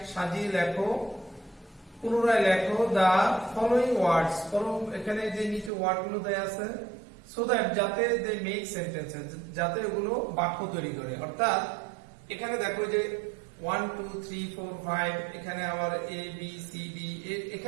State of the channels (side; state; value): left; drops out; at 5.7 s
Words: সাজিয়ে লেখো, পুনরায় লেখো দা ফলোইং ওয়ার্ডস। এখানে যে নিচে ওয়ার্ড গুলো দেয়া আছে সো দ্যাট যাতে দে মেক সেন্টেন্সেস, যাতে এগুলো বাক্য তৈরি করে। অর্থাৎ এখানে দেখো যে 1 2 3 4 5 এখানে আবার এ বি সি ডি,